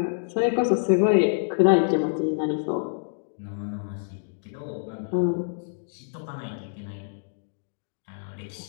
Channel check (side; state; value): right; silent; digital silence